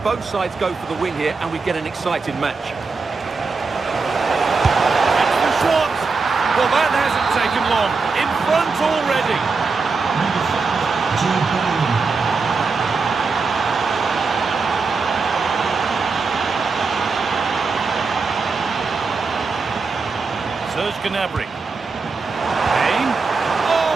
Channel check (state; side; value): quieter; left; 4.4 dB